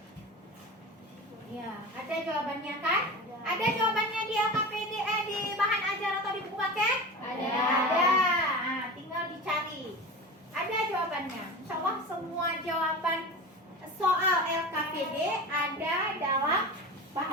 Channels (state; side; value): normal; both; correlation 0.30